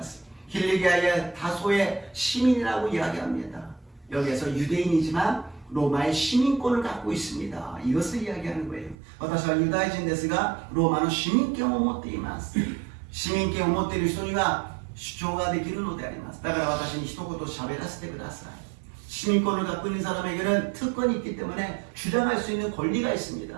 す。 길리기아의 다소의 시민이라고 이야기합니다. 여기에서 유대인이지만 로마의 시민권을 갖고 있습니다. 이것을 이야기하는 거예요. 私はユダヤ人ですがローマの市民権を持っています。市民権を持っている人には主張ができるのであります。だから私に一言喋らせてください。 시민권을 갖고 있는 사람에게는 특권이 있기 때문에 주장할 수 있는 권리가 있습니다.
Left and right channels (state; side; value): drops out; left; at 9.0 s